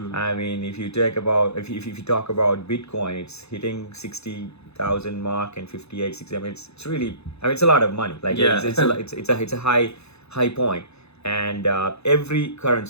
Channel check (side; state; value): right; late; 0.80 ms